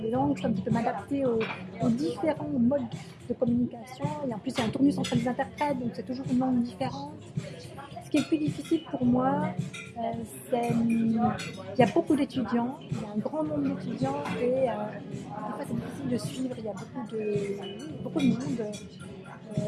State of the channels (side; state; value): both; identical; correlation 1.00